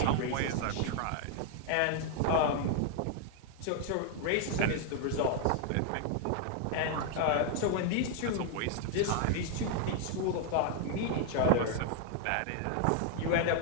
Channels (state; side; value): different; both; correlation 0.00